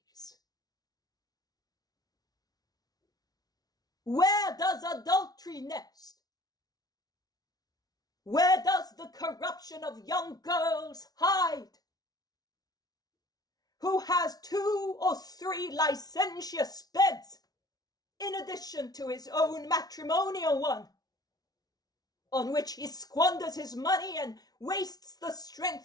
Where does adultery nest? Where does the corruption of young girls hide? Who has 2 or 3 licentious beds in addition to his own matrimonial one, on which he squanders his money and wastes the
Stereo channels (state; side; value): late; right; 0.19 ms